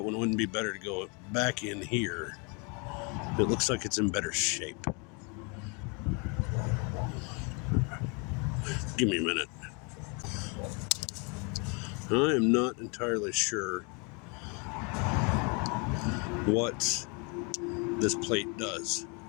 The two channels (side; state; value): right; quieter; 33.0 dB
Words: one wouldn't be better to go back in here. It looks like it's in better shape. Give me a minute. I am not entirely sure what this plate does,